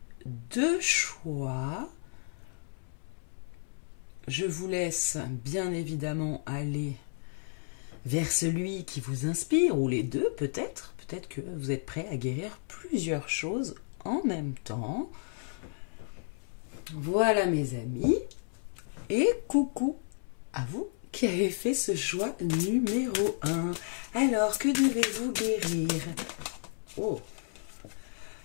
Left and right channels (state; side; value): silent; right; 56 dB below the other